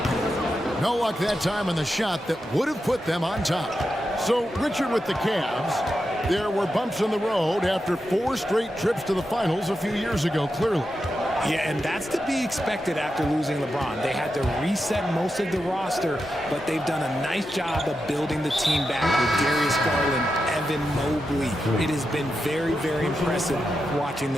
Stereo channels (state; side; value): normal; both; correlation 0.88